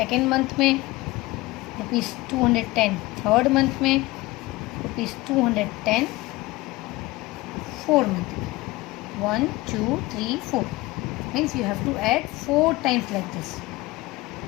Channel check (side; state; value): right; quieter; 20.0 dB